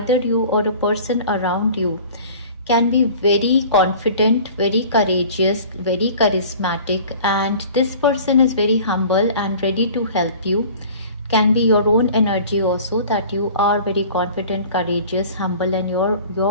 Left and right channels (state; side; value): inverted; both; correlation -0.45